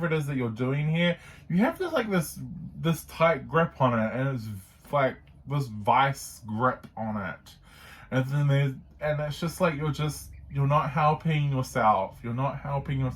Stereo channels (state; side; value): identical; both; correlation 1.00